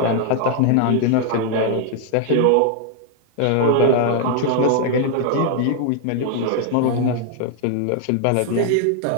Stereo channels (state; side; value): different; both; correlation 0.00